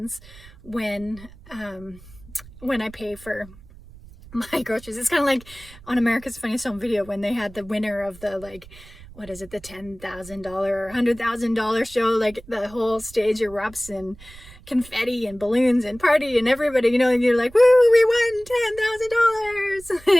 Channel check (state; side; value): noise; right; rumble, 21 dB below the sound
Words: when I pay for my groceries. It's kind of like on America's Funniest Home Video when they had the winner of the, like, what is it, the $10,000 or $100,000 show. Like, the whole stage erupts in confetti and balloons and party, and everybody, and you're like, woo, we won